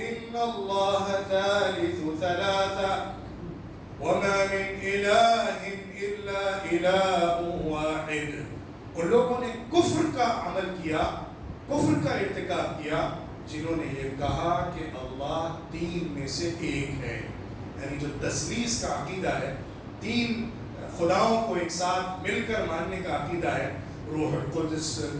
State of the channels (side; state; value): both; identical; correlation 1.00